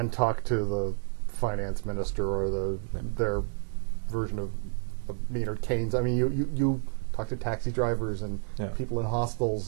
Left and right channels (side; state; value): left; silent; 58 dB below the other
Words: talk to the finance minister or their version of Maynard Keynes. I mean, you talked to taxi drivers and people in